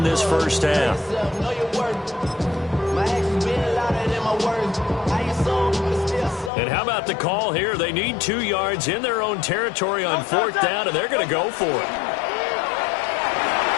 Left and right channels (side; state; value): right; drops out; at 6.5 s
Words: this first half. And how about the call here? They need 2 yards in their own territory on 4th down, and they're going to go for it.